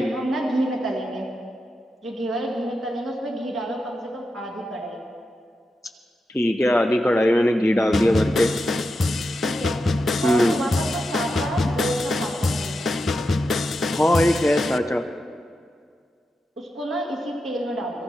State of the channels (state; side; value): normal; both; correlation 0.88